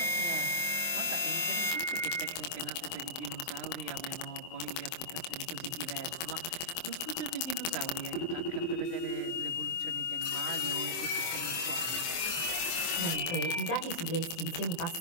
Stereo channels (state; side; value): late; right; 24 ms